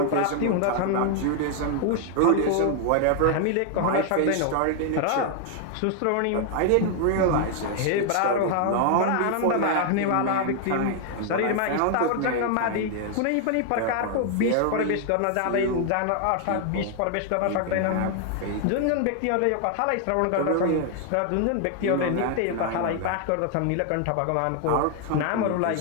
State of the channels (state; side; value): different; both; correlation 0.00